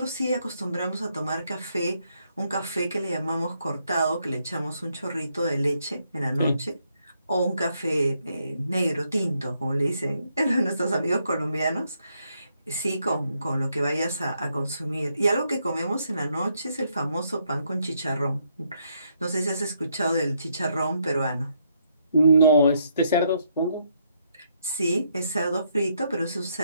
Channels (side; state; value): both; inverted; correlation -0.75